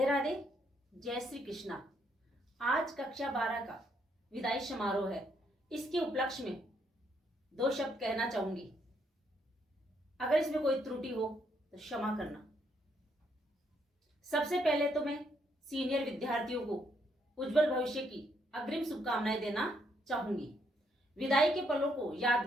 राधे, जय श्री कृष्णा। आज कक्षा 12 का विदाई समारोह है। इसके उपलक्ष्य में 2 शब्द कहना चाहूंगी। अगर इसमें कोई त्रुटि हो तो क्षमा करना। सबसे पहले तो मैं सीनियर विद्यार्थियों को उज्जवल भविष्य की अग्रिम शुभकामनाएं देना चाहूंगी। विदाई के पलों को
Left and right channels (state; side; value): normal; both; correlation 0.73